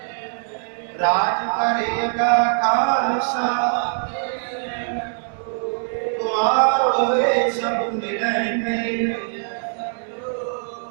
राज करेगा खालसा द्वार होए सब मिलेंगे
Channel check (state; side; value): silent; left; digital silence